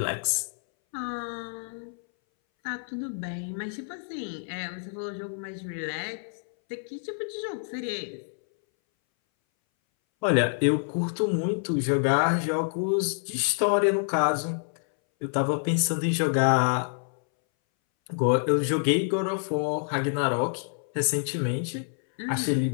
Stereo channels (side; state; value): right; silent; 60 dB below the other